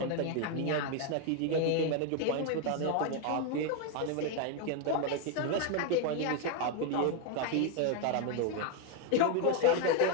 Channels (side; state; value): both; different; correlation 0.01